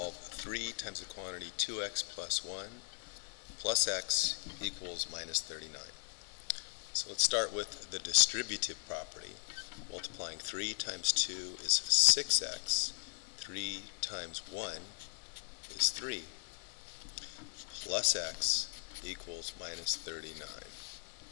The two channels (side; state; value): right; silent; 52 dB below the other